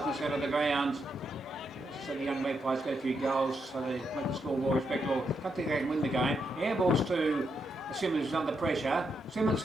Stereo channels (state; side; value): normal; both; correlation 0.81